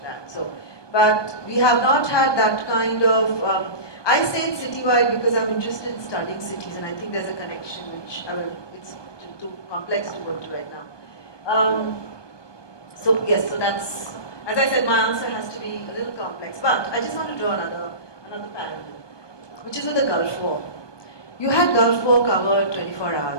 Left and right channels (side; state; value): right; late; 1.2 ms